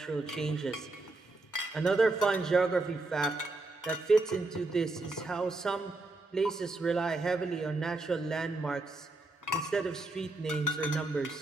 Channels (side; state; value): left; quieter; 3.1 dB